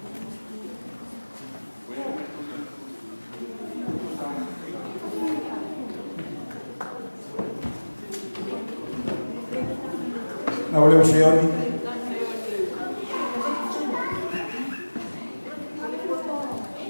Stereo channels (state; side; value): inverted; both; correlation -1.00